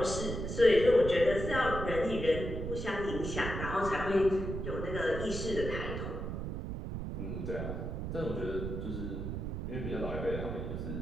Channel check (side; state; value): right; noise; rumble, 4 dB below the sound